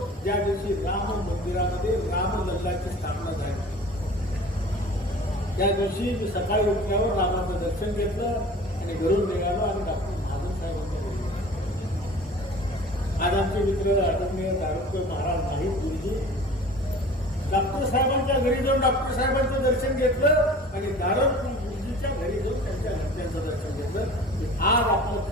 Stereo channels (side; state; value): both; normal; correlation 0.43